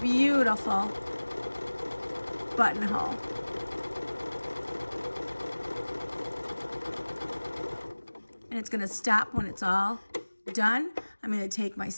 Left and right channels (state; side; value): inverted; both; correlation -1.00